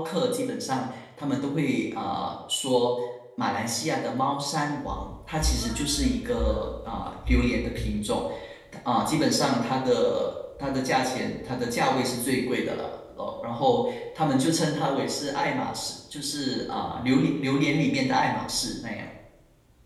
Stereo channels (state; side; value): identical; both; correlation 1.00